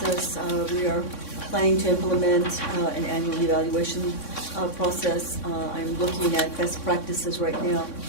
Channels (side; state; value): right; late; 3.6 ms